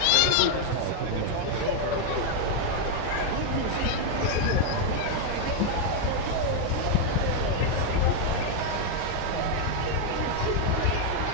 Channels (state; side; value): different; both; correlation 0.00